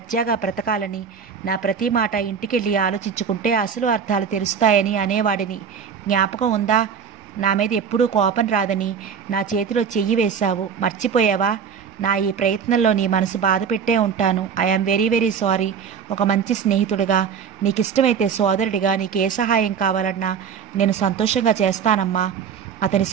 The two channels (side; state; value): left; quieter; 7.0 dB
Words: బ్రతకాలని. నా ప్రతి మాట ఇంటికెళ్ళి ఆలోచించుకుంటే అసలు అర్థాలు తెలుస్తాయని అనేవాడిని. జ్ఞాపకం ఉందా? నా మీద ఎప్పుడూ కోపం రాదని నా చేతిలో చెయ్యి వేశావు, మర్చిపోయావా? నా ఈ ప్రయత్నంలో నీ మనసు బాధ పెట్టే ఉంటాను. I am very very sorry. ఒక మంచి స్నేహితుడిగా, నీకు ఇష్టమైతే సోదరుడిగా నీకు ఏ సహాయం కావాలన్నా నేను సంతోషంగా చేస్తానమ్మా. అతని